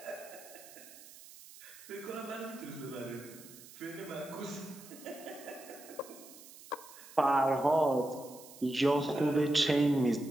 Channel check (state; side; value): noise; right; hiss, 18 dB below the sound